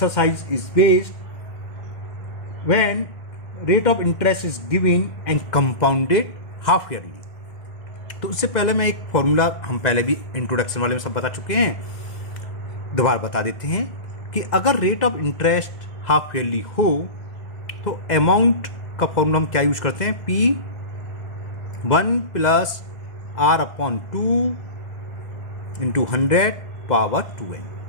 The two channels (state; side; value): late; right; 2.0 ms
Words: is based when rate of interest is given and compounded half yearly. तो उससे पहले मैं एक formula हम पहले भी introduction वाले में सब बता चुके हैं, दोबारा बता देते हैं कि अगर rate of interest half yearly हो तो अमाउंट का फॉर्मूला हम क्या यूज करते हैं, P 1 plus R upon 2 into 100 power 2n.